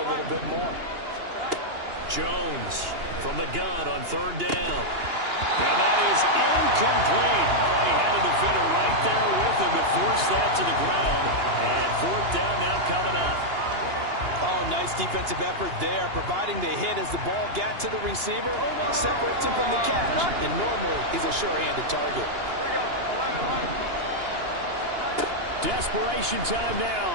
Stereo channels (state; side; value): late; left; 2.8 ms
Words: little bit more. Jones from the gun on 3rd down. And that is incomplete. Oh, he had a defender right there with him to force that to the ground. And 4th down now coming up. Oh, nice defensive effort there, providing the hit as the ball got to the receiver, separates him from the catch. And normally, he's a sure-handed target. Desperation time